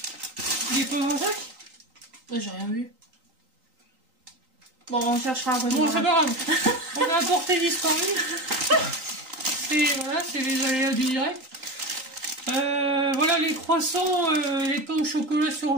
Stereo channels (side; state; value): left; late; 3.9 ms